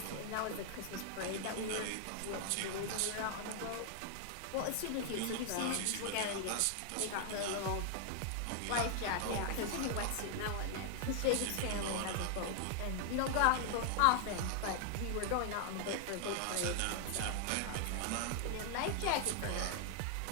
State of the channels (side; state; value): both; different; correlation 0.00